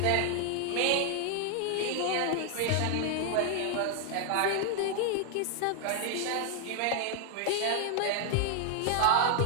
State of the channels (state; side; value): different; both; correlation 0.00